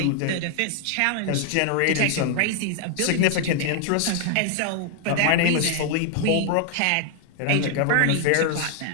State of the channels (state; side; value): different; both; correlation 0.00